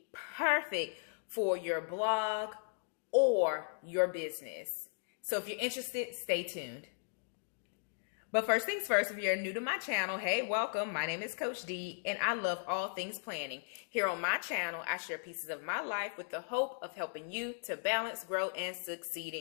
perfect for your blog or your business. So if you're interested, stay tuned. But first things first, if you're new to my channel, hey, welcome. My name is Coach D, and I love all things planning. Here on my channel, I share pieces of my life with the hope of helping you to balance, grow, and succeed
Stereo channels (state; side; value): silent; right; digital silence